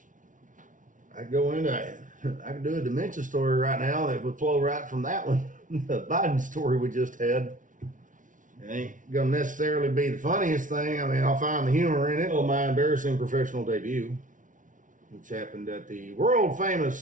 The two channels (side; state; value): left; late; 0.38 ms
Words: I could do a dementia story right now that would flow right from that one. The Biden story we just had. It ain't gonna necessarily be the funniest thing. I mean, I'll find the humor in it. Oh, my embarrassing professional debut, which happened at the world